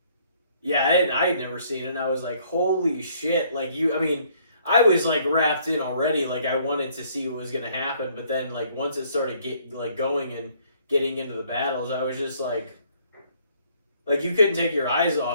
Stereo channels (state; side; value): inverted; both; correlation -0.63